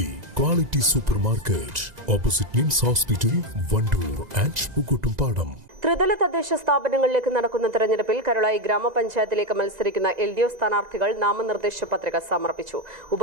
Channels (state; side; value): late; left; 2.0 ms